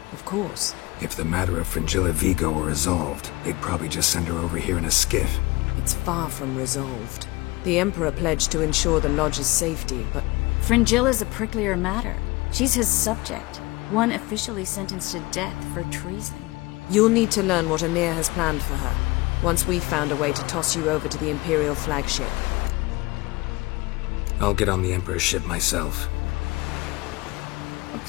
Of course. If the matter of Fringilla Vigo were resolved, they'd probably just send her over here in a skiff. It's far from resolved. The Emperor pledged to ensure the Lodge's safety, but... Fringilla's a pricklier matter. She's his subject. One officially sentenced to death for treason. You'll need to learn what Emir has planned for her, once we've found a way to toss you over to the Imperial flagship. I'll get on the Emperor's ship myself. A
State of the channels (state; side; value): quieter; right; 22.2 dB